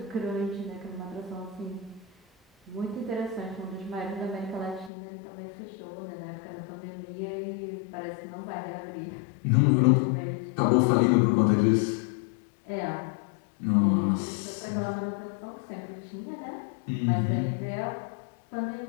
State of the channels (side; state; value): right; drops out; at 4.9 s